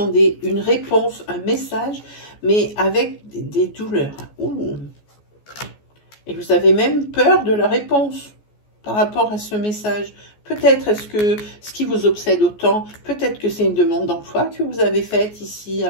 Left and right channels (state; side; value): late; right; 14 ms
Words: une réponse, un message, mais avec des douleurs. Ouh. Et vous avez même peur de la réponse par rapport à ce message. Peut-être est-ce que ce qui vous obsède autant, peut-être que c'est une demande d'emploi que vous avez faite ici,